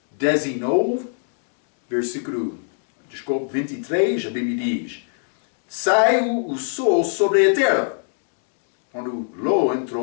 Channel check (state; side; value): silent; right; digital silence